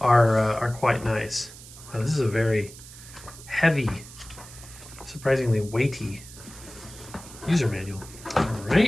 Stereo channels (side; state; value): right; noise; hiss, 17 dB below the sound